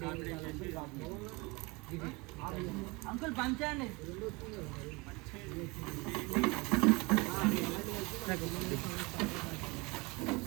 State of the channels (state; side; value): quieter; left; 25.7 dB